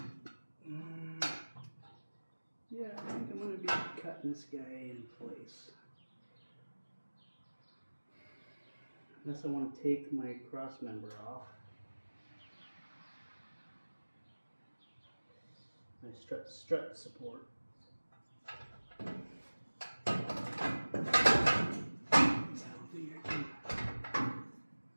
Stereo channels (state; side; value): inverted; both; correlation -1.00